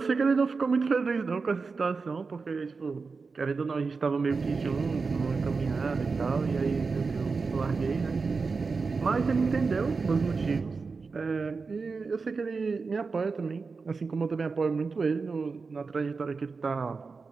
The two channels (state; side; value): quieter; left; 4.5 dB